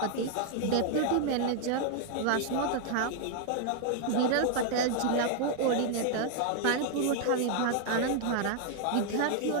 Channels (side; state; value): both; different; correlation 0.00